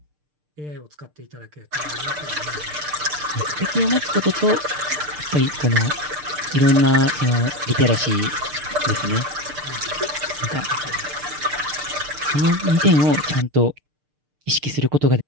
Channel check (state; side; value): late; left; 6.7 ms